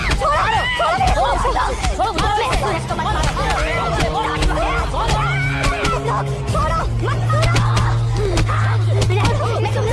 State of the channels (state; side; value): identical; both; correlation 1.00